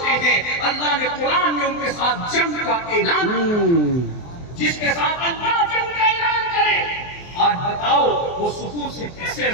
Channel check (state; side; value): late; right; 24 ms